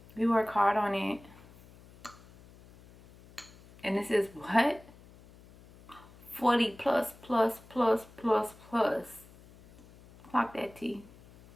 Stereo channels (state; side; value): noise; left; hum, 23 dB below the sound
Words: We work hard on it. And this is what? 40 plus. Clock that T.